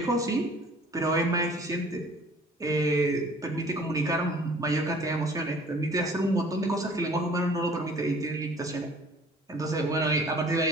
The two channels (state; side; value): normal; both; correlation 0.51